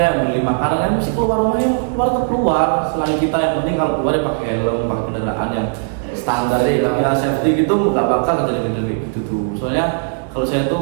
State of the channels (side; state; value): left; silent; 68 dB below the other